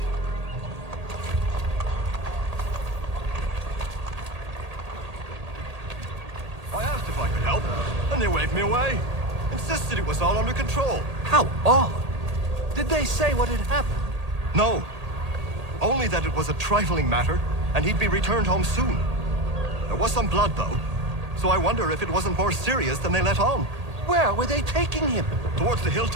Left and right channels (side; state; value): left; late; 1.8 ms